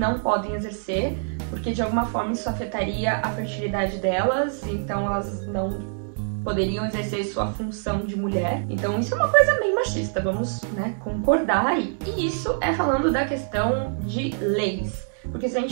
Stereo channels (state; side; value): silent; left; digital silence